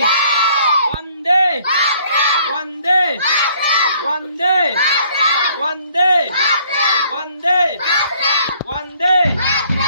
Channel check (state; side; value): inverted; both; correlation -0.61